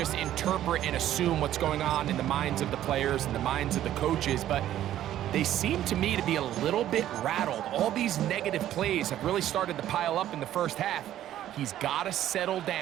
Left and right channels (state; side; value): quieter; left; 12.3 dB